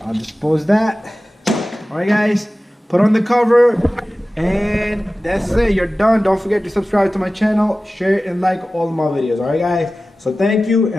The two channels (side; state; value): both; normal; correlation 0.96